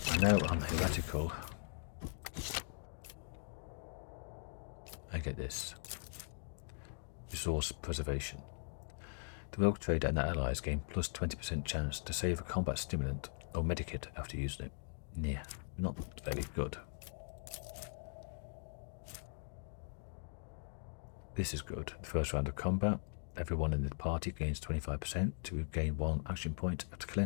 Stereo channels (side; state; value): right; silent; digital silence